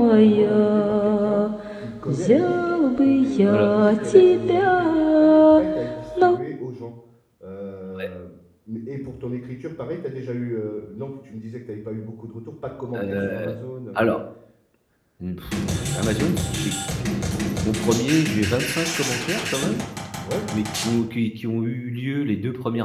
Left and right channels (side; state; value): both; identical; correlation 1.00